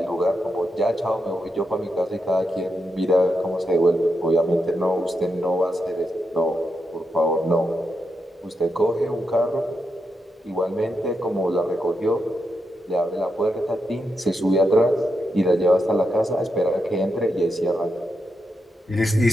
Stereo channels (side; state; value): both; normal; correlation 0.84